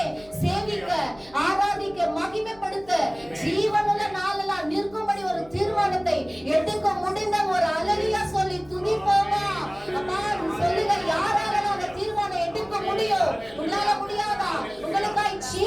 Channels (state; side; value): noise; left; hum, 25 dB below the sound